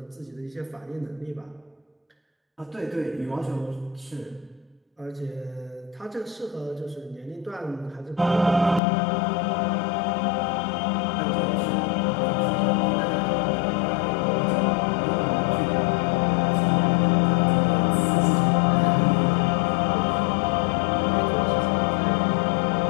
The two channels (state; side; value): drops out; right; at 8.8 s